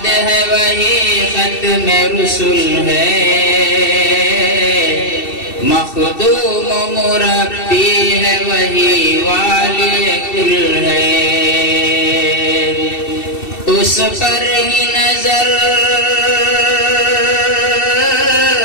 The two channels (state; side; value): late; right; 2.7 ms